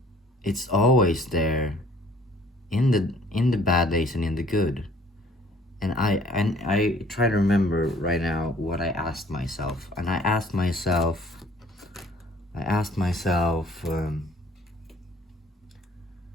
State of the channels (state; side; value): normal; both; correlation 0.56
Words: it's always there, in the bad days and in the good. And I try to remember right now what I asked myself. And I asked myself,